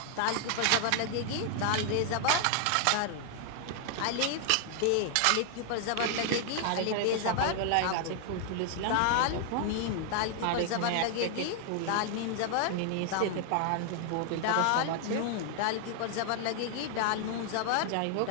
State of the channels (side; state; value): both; different; correlation 0.00